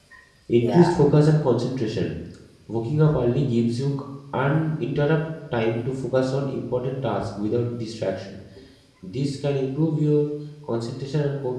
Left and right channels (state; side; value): identical; both; correlation 1.00